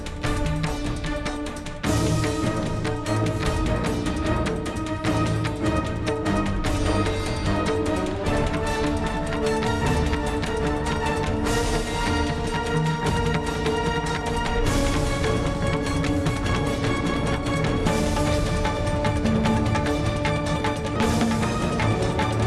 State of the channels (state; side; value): identical; both; correlation 1.00